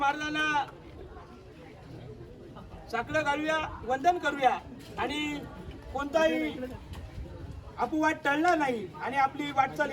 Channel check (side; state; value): both; identical; correlation 1.00